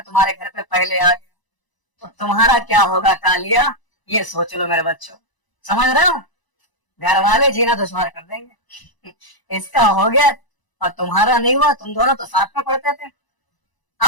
तुम्हारे घर पे पहले आ गया तो तुम्हारा क्या होगा कालिया, ये सोच लो मेरे बच्चों। समझ रहे हो? घर वाले जीना दुश्वार कर देंगे। इसका हो गया और तुम्हारा नहीं हुआ, तुम दोनों तो साथ में पढ़ते थे।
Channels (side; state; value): right; late; 1.0 ms